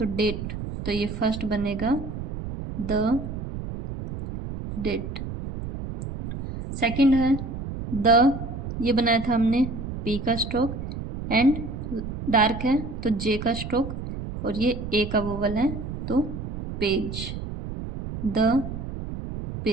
डेट, तो ये फर्स्ट बनेगा द डेट। सेकंड है द, ये बनाया था हमने पी का स्ट्रोक एंड डार्क है तो जे का स्ट्रोक, और ये ए का वोवल है तो पेज, द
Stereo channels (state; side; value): noise; right; rumble, 7 dB below the sound